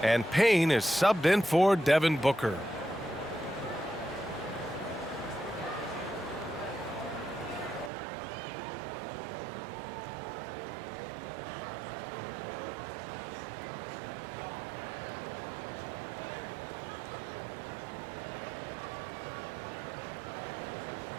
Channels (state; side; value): drops out; left; at 7.9 s